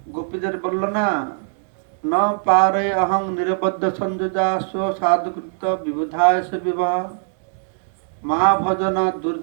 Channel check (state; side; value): silent; left; digital silence